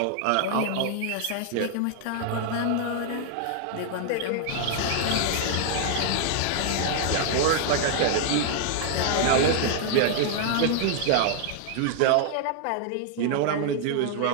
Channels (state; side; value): different; both; correlation 0.00